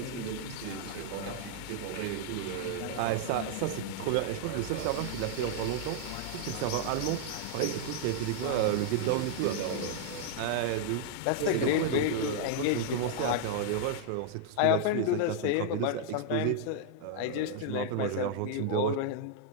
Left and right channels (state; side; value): different; both; correlation -0.01